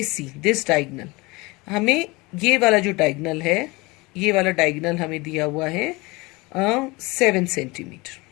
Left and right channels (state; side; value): quieter; right; 24.1 dB